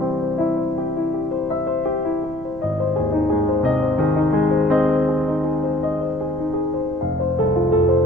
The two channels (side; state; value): right; noise; rumble, 18 dB below the sound